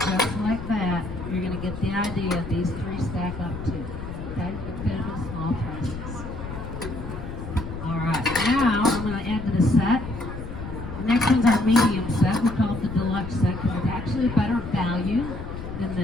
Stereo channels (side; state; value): left; noise; rumble, 9 dB below the sound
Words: like that. You're going to get the idea. These 3 stack up too. Okay? You can fit them in small prices. Alright, now I'm going to add to the set. The next one's our medium set. We call it the deluxe set because it's actually a better value than